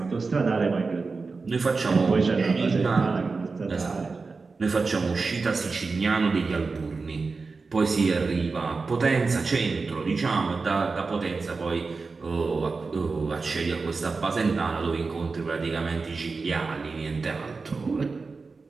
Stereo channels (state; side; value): quieter; left; 4.2 dB